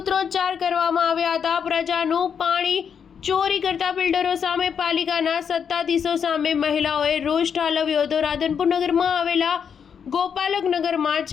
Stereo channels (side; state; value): right; quieter; 7.2 dB